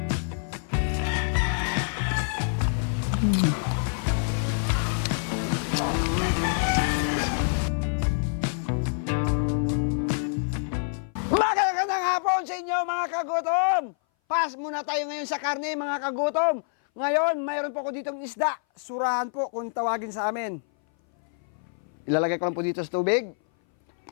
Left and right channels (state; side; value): silent; right; 58 dB below the other